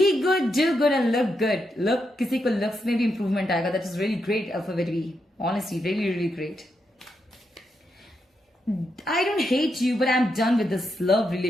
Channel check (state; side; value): normal; both; correlation 0.83